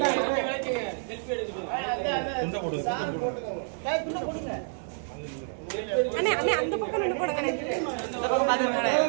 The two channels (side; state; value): left; silent; 59 dB below the other